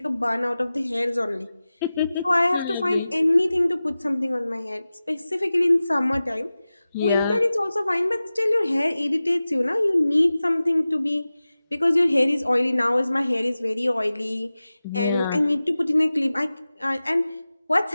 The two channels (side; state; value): both; inverted; correlation -0.96